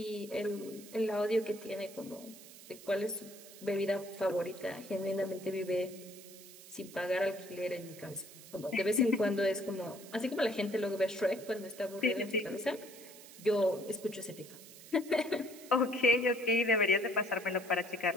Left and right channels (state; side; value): noise; right; hiss, 18 dB below the sound